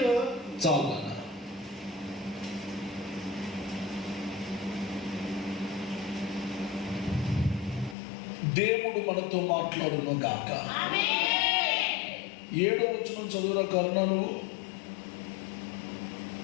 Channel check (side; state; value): right; drops out; at 8.0 s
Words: చాలా దేవుడు మనతో మాట్లాడును గాక. 7వ వచనం చదువురా కరుణ. నువ్వు